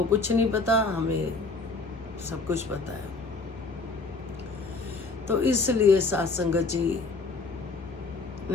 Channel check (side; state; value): right; quieter; 3.8 dB